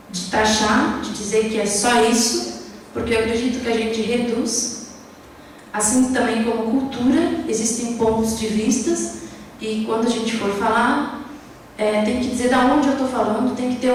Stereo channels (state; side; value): identical; both; correlation 1.00